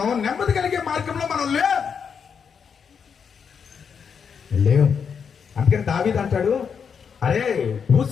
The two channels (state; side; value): quieter; right; 6.7 dB